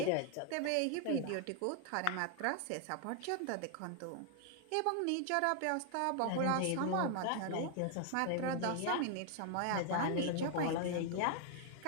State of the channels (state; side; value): different; both; correlation 0.00